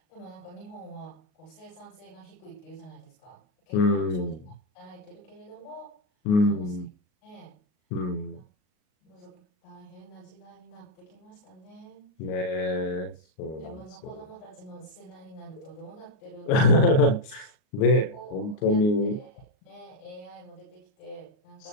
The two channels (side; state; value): right; late; 38 ms